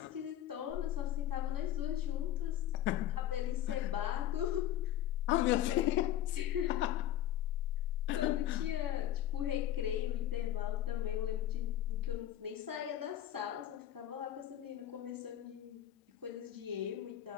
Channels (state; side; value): quieter; right; 12.0 dB